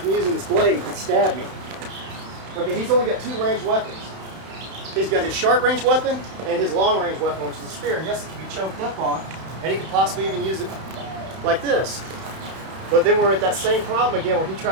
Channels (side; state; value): left; late; 31 ms